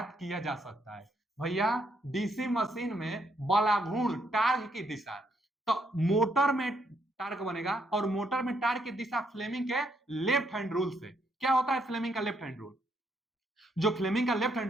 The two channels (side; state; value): both; normal; correlation 0.74